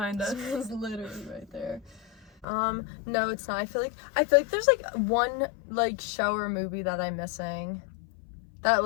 us. It's literally right there. No, it's not. I feel like there's like one like show or movie that I'm missing that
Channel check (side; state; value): right; drops out; at 2.5 s